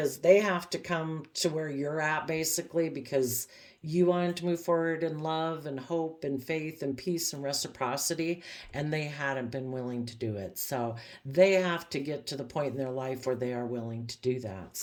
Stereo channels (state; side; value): identical; both; correlation 1.00